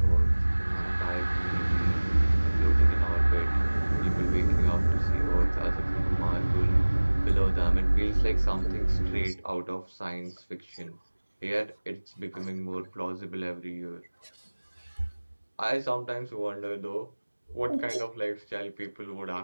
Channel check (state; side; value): inverted; both; correlation -1.00